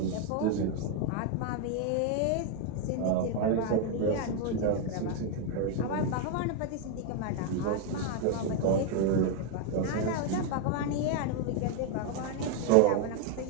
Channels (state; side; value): different; both; correlation 0.01